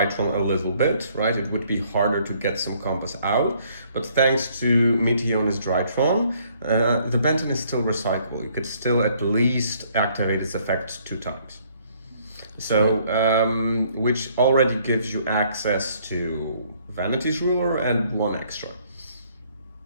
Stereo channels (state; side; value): inverted; both; correlation -0.64